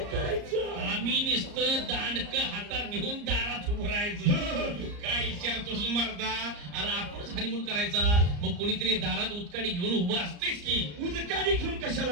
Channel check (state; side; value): late; left; 34 ms